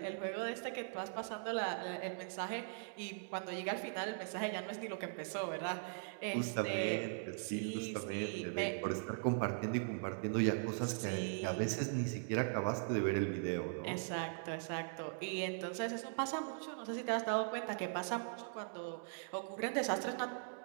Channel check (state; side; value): silent; left; digital silence